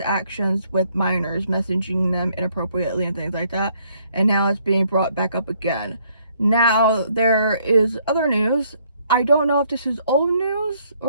with minors, messaging them inappropriately and things like that, and now it's being brought back up again. Now, there is other news. I don't know if this is old news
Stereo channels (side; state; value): both; inverted; correlation -0.68